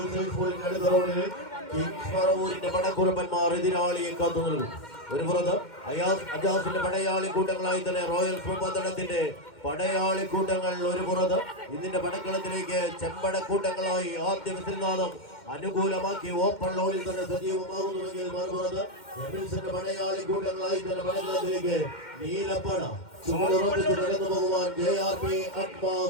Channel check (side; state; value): right; late; 2.1 ms